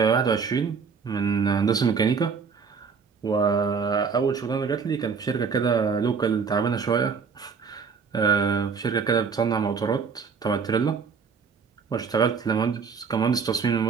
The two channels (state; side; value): quieter; left; 5.7 dB